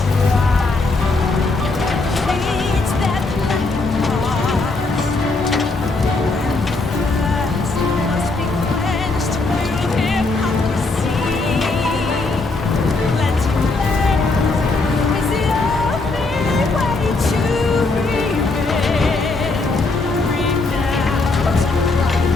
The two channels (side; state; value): right; quieter; 3.4 dB